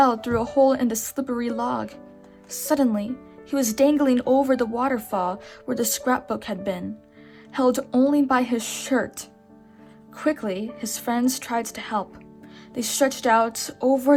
through a hole in the slippery log. Suddenly, he was dangling over the waterfall where the scrapbook had been, held only by his shirt. Quickly, his friends tried to help. They stretched out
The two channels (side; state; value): both; identical; correlation 1.00